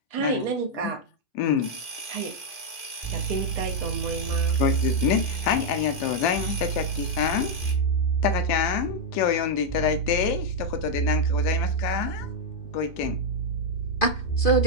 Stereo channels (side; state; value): right; late; 2.5 ms